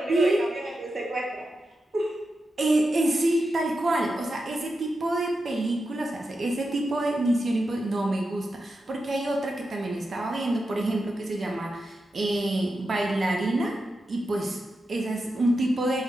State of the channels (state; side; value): normal; both; correlation 0.89